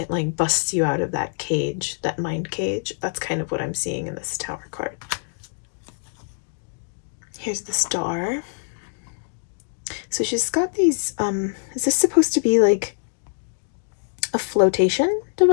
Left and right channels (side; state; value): right; silent; digital silence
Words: like busts you out of that cage, that mind cage. That's kind of what I'm seeing in this tower card. Here's the star. So she's got these, is this supposed to be like a flotation